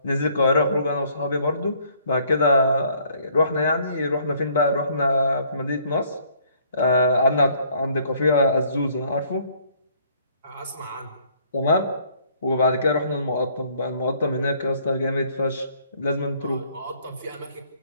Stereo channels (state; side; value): inverted; both; correlation -0.63